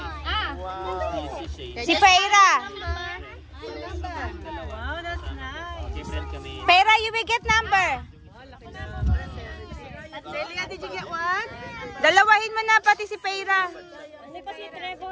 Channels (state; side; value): identical; both; correlation 1.00